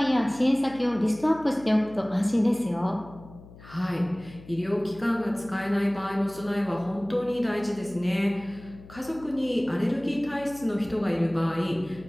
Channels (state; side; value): noise; left; hum, 19 dB below the sound